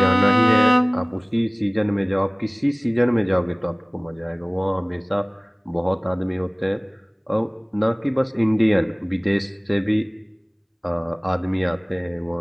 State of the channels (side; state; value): both; identical; correlation 1.00